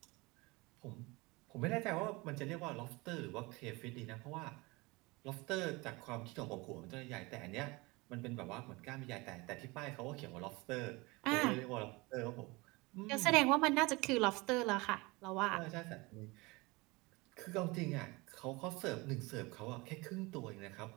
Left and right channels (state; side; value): quieter; left; 24.3 dB